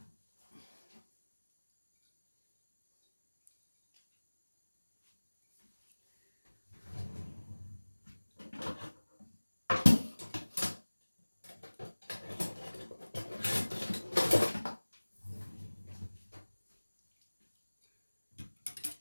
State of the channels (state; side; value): inverted; both; correlation -1.00